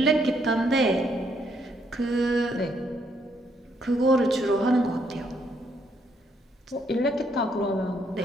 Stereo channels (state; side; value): normal; both; correlation 0.72